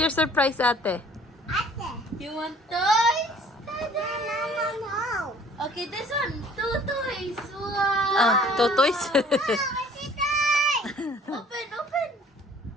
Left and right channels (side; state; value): both; normal; correlation 0.54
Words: surprise, ate? You want toys? No. Okay, this one. 2 toys. Wow. Two toys? Open, open.